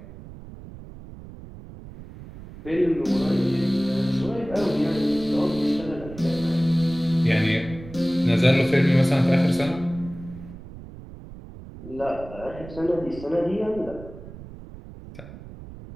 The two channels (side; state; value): right; noise; rumble, 15 dB below the sound